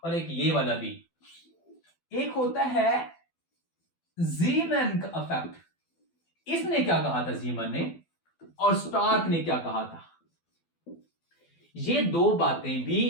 और एक ये वाला भी। एक होता है जीमैन का इफेक्ट, इसने क्या कहा था जीमन ने, और स्टार्क ने क्या कहा था। ये दो बातें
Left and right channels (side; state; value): right; late; 12 ms